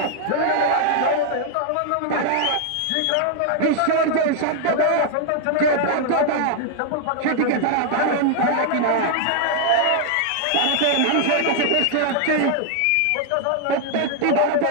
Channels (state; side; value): different; both; correlation 0.00